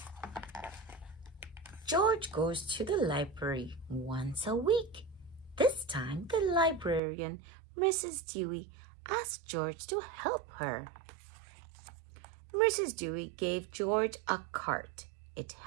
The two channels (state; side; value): drops out; left; at 7.0 s